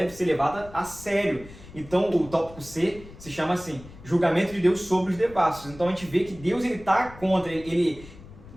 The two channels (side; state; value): left; noise; rumble, 18 dB below the sound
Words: ser levada a sério. Então o tópico C se chama assim, julgamento de Deus sobre os devassos. Então a gente vê que Deus ele está contra,